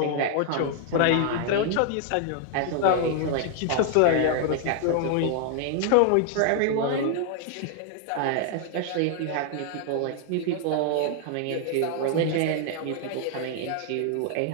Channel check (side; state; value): both; different; correlation 0.00